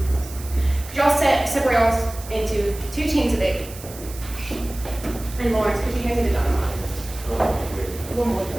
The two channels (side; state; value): right; noise; hiss, 16 dB below the sound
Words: 14, 15. Could y'all separate y'all into 2 teams of 8? And Lawrence, could you hand me the dynamite? One more